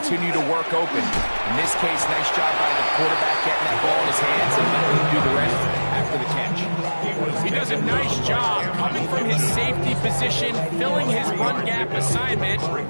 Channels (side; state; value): both; inverted; correlation -1.00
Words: to work open. In this case, nice job by the quarterback getting that ball in his hands and letting him do the rest after the catch. He does a nice job coming from his safety position, filling his run gap assignment.